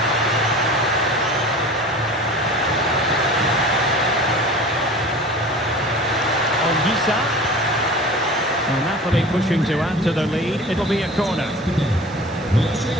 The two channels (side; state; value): both; normal; correlation 0.39